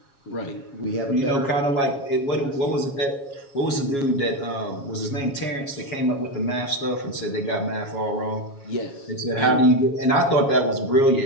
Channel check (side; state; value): right; late; 7.2 ms